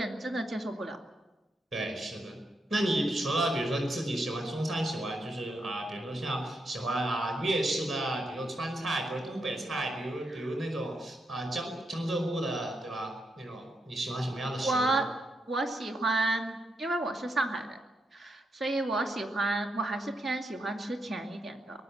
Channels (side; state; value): both; normal; correlation 0.83